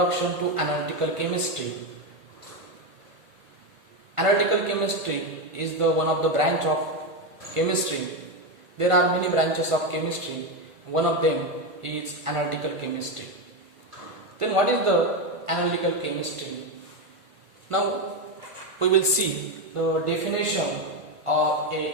to analytical chemistry. Analytical chemistry is the one of the branch of chemistry. There are many branches of chemistry. One of them is analytical chemistry. Then what is the analytical chemistry? Now we will see the definition of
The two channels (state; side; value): late; left; 1.5 ms